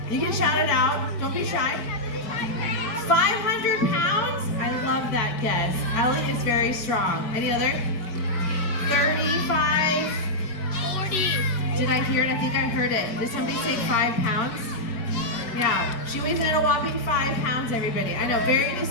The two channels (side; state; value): right; late; 4.4 ms